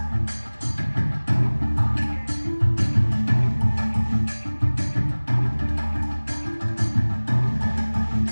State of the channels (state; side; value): inverted; both; correlation -1.00